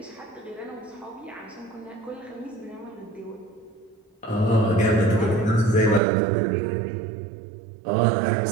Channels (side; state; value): left; drops out; at 6.0 s